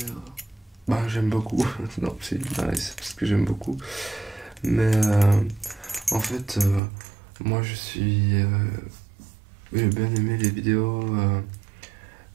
bah j'aime beaucoup. Non, c'est nice parce que j'aime beaucoup. Mais en fait, moi j'ai bien aimé les vidéos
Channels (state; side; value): drops out; left; at 6.8 s